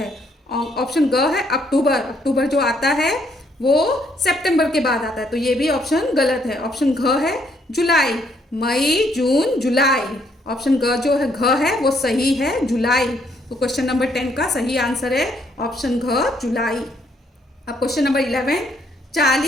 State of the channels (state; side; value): normal; both; correlation 0.70